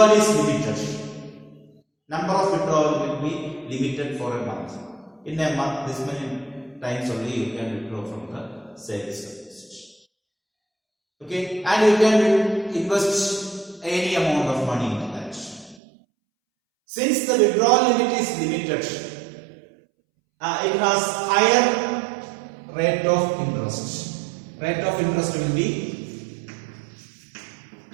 is limited, number of withdrawal will be limited for a month. In a month, this many times only you can withdraw from the savings deposit. Okay, and you can invest any amount of money into that. Since the withdrawal limit is limited, it has higher rate of interest. Rate of interest will be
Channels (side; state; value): left; drops out; at 15.8 s